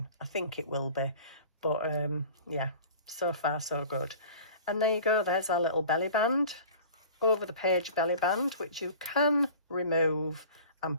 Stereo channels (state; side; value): inverted; both; correlation -0.42